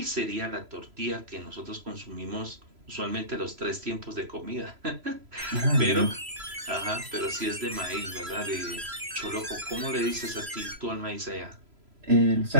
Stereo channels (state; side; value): late; left; 3.0 ms